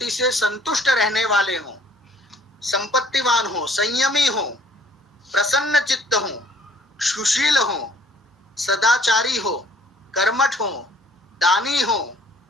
से संतुष्ट रहने वाले हो, संपत्तिवान हो, संयमी हो, प्रसन्न चित्त हो, सुशील हो, सदाचारी हो, कर्मठ हो, दानी हो,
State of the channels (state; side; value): normal; both; correlation 0.57